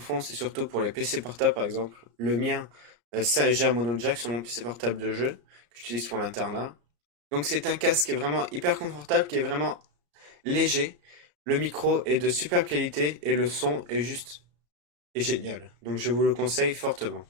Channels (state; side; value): late; left; 34 ms